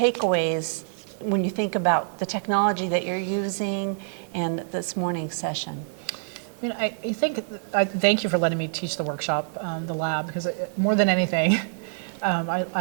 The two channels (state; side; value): silent; left; 58 dB below the other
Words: when you think about the technology that you're using and this morning's session. I mean, I thank you for letting me teach the workshop, the lab, because more than anything,